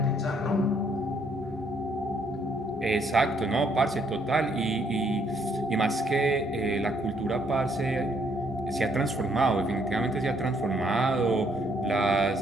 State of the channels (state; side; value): normal; both; correlation 0.69